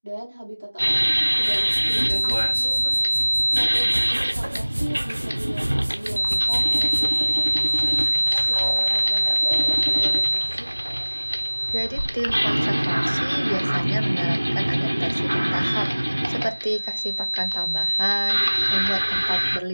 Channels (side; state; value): both; inverted; correlation -1.00